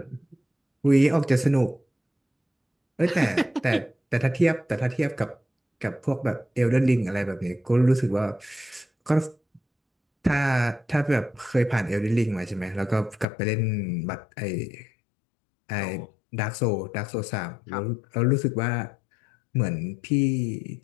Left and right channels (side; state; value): right; drops out; at 13.2 s